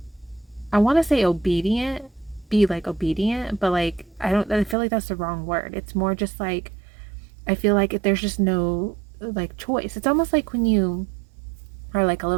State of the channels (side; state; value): left; drops out; at 4.8 s